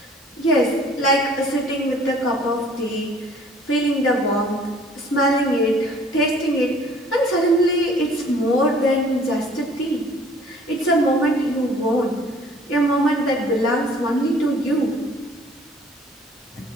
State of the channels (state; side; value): normal; both; correlation 0.54